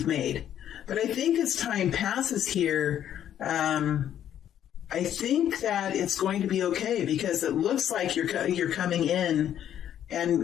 made. But I think as time passes here, I think that it's going to be okay, because it looks like you're coming in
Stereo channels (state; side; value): quieter; right; 10.4 dB